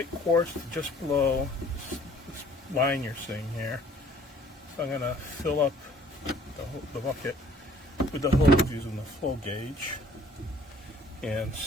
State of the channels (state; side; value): normal; both; correlation 0.56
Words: quarts, just below this line you're seeing here. So I'm going to fill up the bucket with the hose using the flow gauge. and